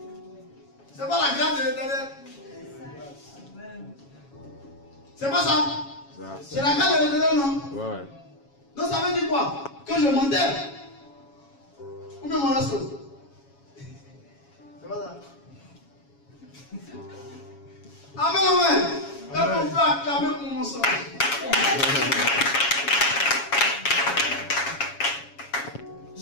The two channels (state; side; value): late; right; 7.2 ms